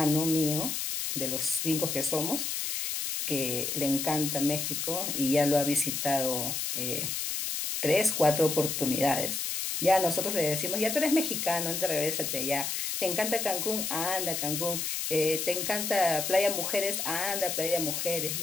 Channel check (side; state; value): left; noise; hiss, 2 dB below the sound